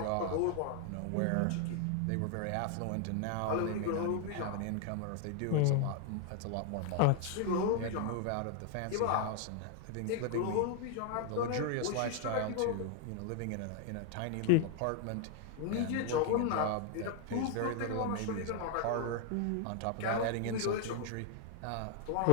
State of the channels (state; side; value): different; both; correlation 0.00